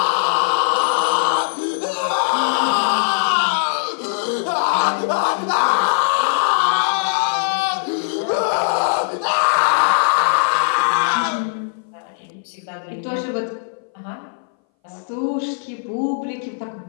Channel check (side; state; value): right; silent; 61 dB below the other